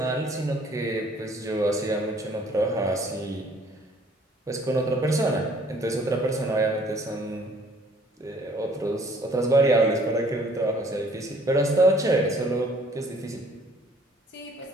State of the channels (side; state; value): both; normal; correlation 0.57